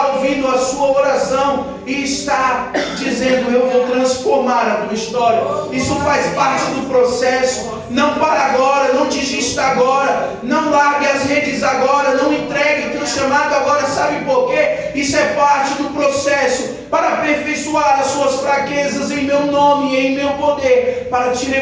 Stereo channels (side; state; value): both; identical; correlation 1.00